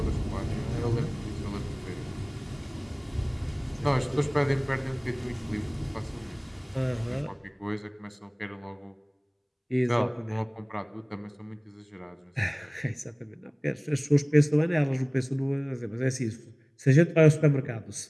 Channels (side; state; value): both; identical; correlation 1.00